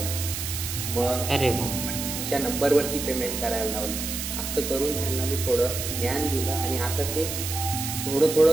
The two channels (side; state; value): right; noise; hiss, 5 dB below the sound